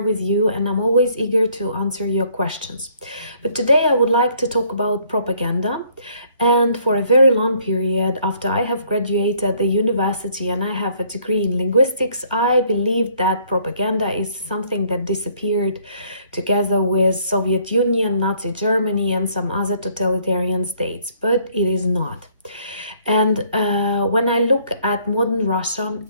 you and I'm always eager to answer your questions. But today I would like to talk about propaganda. And for a very long period, after I have graduated the university and I have a degree in linguistics, I believed that propaganda is something that disappeared together with Soviet Union, Nazi Germany, and some other totalitarian states, but it is not. And when I look at modern Russia,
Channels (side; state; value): both; inverted; correlation -0.63